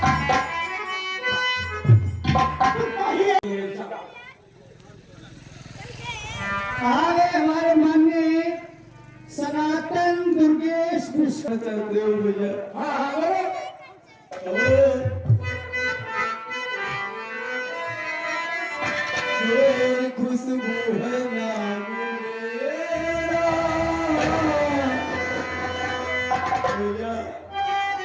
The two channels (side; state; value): both; identical; correlation 1.00